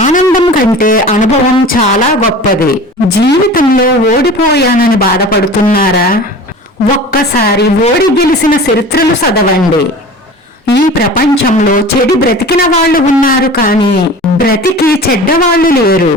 ఆనందం కంటే అనుభవం చాలా గొప్పది. జీవితంలో ఓడిపోయానని బాధపడుతున్నారా? ఒక్కసారి ఓడి గెలిచిన చరిత్రలు చదవండి. ఈ ప్రపంచంలో చెడు బ్రతికిన వాళ్ళు ఉన్నారు, కానీ బ్రతికి చెడ్డవాళ్ళు లేరు.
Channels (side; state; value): both; normal; correlation 0.38